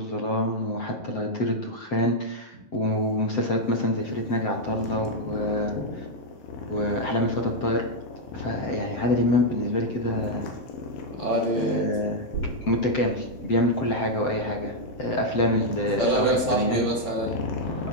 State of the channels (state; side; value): late; right; 7.8 ms